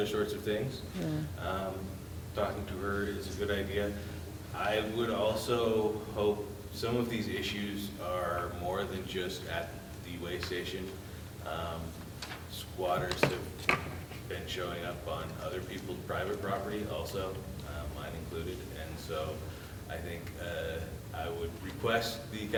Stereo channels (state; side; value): identical; both; correlation 1.00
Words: sorts of things. Talking to her is a good idea. I would also hope some of these issues are more than just at the way station. Squatters have been showing up on other people's private property also, mine included, and so I think I would request the